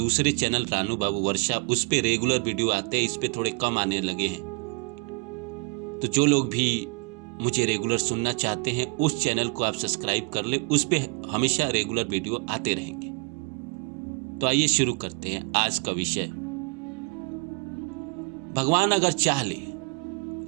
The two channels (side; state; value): left; quieter; 33.2 dB